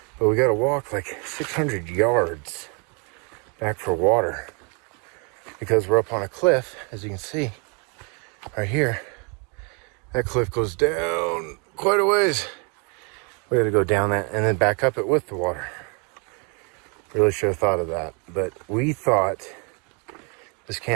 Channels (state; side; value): quieter; left; 34.4 dB